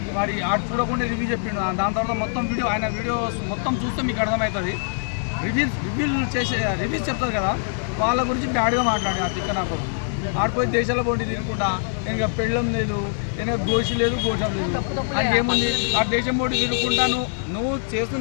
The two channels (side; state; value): right; silent; digital silence